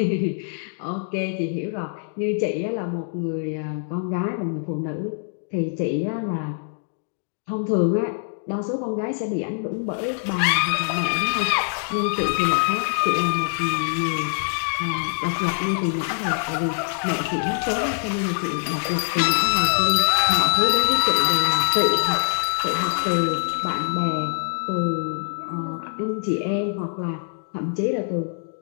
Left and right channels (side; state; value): right; silent; digital silence